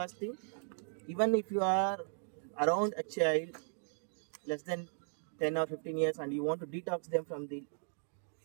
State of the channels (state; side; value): silent; left; digital silence